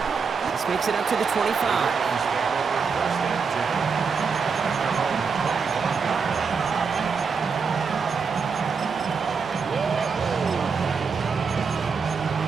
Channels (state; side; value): quieter; left; 5.5 dB